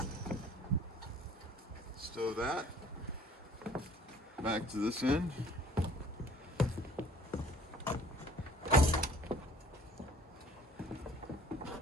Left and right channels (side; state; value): both; normal; correlation 0.53